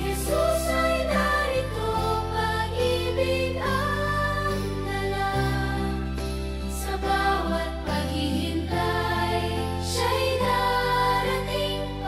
ay narito, pag-ibig ang dala. Sa bawat paghihintay, siya'y darating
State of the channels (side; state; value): both; identical; correlation 1.00